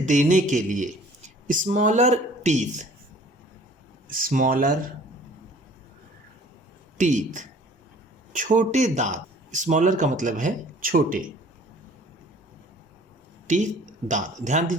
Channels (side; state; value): both; normal; correlation 0.51